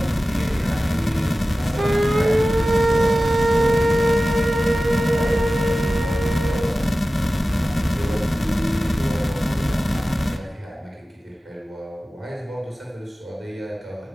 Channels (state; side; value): normal; both; correlation 0.96